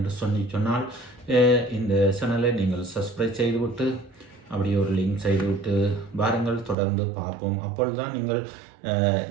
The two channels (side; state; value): left; drops out; at 6.8 s